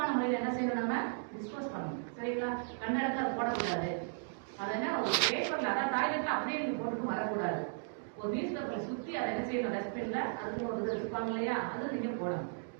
முறையில் என்ன செய்யணும், நம்ம டிஸ்போஸ் பண்ணணும். சரிங்களா? கண்ட இடத்துல அதை போடக்கூடாது. அதை என்ன ஒரு பேப்பரில், அதாவது டாய்லெட்டில் அப்படியே நீங்கள் போட்டுட்டு வரக்கூடாது. ஒரு நியூஸ் பேப்பரை சுற்றி அதை என்ன செய்யணும், டஸ்ட்பினில் அதுக்குன்னு ஒரு இது வச்சுப்பாங்க இல்லையா, அதில் நீங்கள் போடணும்.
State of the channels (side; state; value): left; silent; digital silence